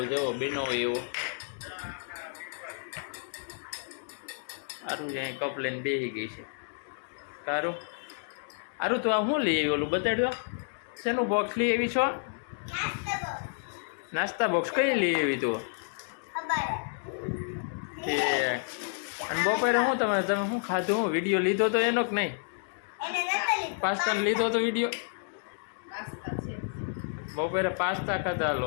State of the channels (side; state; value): right; silent; digital silence